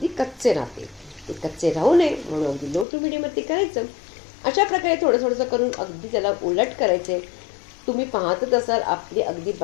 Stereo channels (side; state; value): right; drops out; at 2.9 s